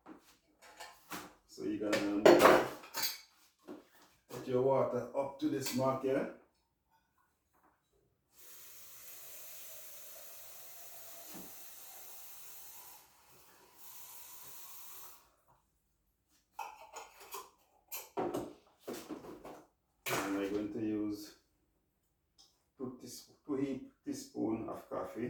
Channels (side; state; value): both; identical; correlation 1.00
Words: So you're going to put your water up to this mark here. And we're going to use 2 teaspoons of